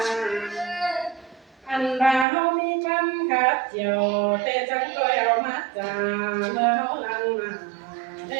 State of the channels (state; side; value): drops out; left; at 2.2 s